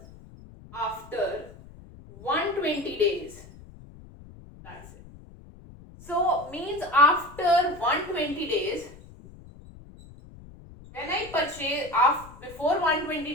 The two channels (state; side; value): noise; left; rumble, 19 dB below the sound